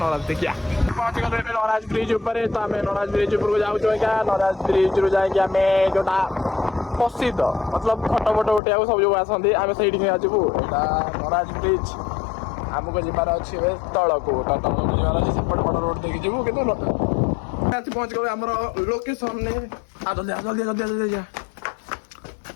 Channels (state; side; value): drops out; right; at 8.6 s